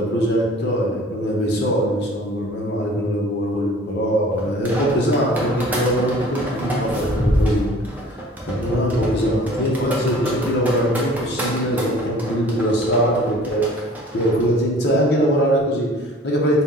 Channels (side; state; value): both; normal; correlation 0.48